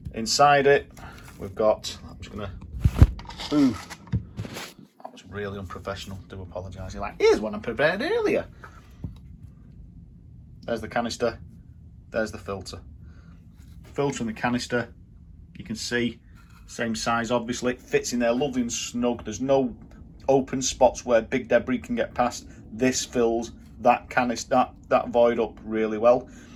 Inside it, we've got, I'm just gonna, ooh, that was really unprofessional, do apologise. You're like, here's one I prepared earlier. There's the canister, there's the filter. Filter and the canister, you can see, same size obviously, it fits in there lovely and snug. There's no open spots where big debris can get past. This fills that canister, that void up really well.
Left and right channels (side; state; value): both; identical; correlation 1.00